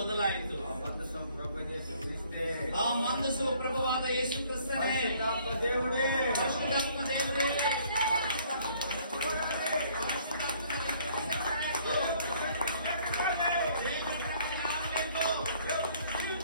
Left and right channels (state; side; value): inverted; both; correlation -0.60